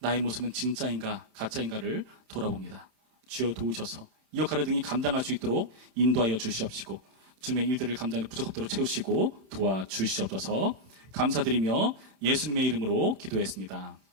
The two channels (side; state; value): left; late; 31 ms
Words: 모습은 진짜인가 가짜인가를 돌아봅니다. 주여 도우셔서 이 역할을 등이 감당할 수 있도록 인도하여 주시옵시고 주님의 일들을 감당하는 부족함대로 채우시고 도와주시옵소서. 감사드리며 예수님의 이름으로 기도했습니다.